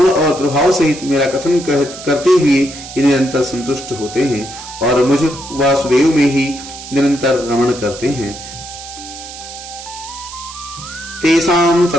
और प्रभाव सहित मेरा कथन करते हुए निरंतर संतुष्ट होते हैं और मुझ वासुदेव में ही निरंतर रमण करते हैं। तेषां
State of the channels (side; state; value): right; noise; hiss, 13 dB below the sound